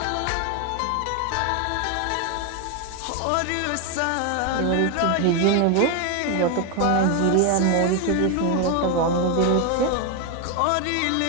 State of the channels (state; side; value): different; both; correlation 0.01